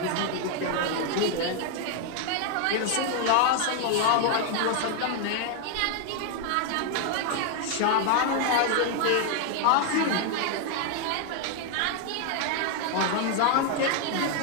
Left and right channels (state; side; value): different; both; correlation 0.00